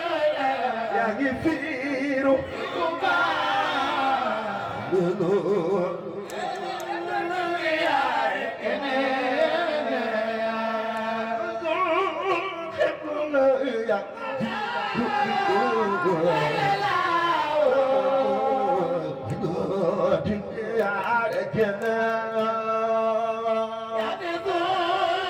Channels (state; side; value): identical; both; correlation 1.00